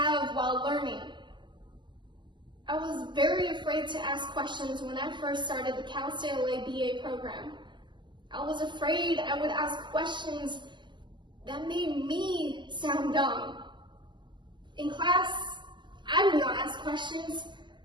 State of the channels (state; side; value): late; left; 0.22 ms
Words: while learning. I was very afraid to ask questions when I first started the Cal State LA BA program. I was afraid I would ask questions that made me sound dumb. In class, I do not ask questions.